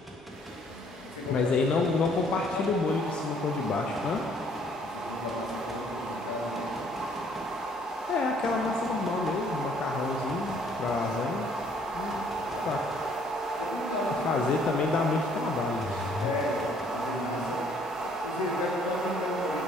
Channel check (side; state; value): both; normal; correlation 0.62